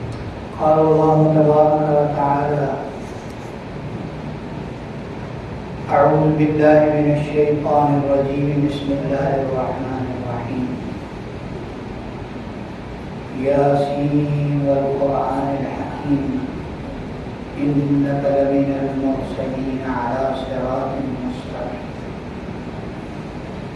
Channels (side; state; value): both; identical; correlation 1.00